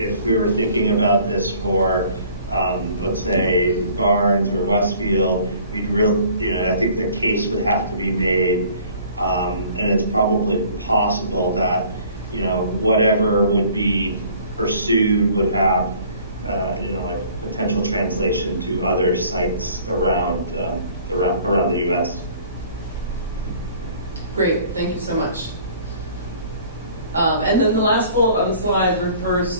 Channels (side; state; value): both; inverted; correlation -0.53